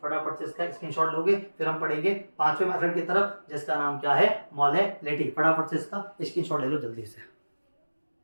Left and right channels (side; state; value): both; inverted; correlation -1.00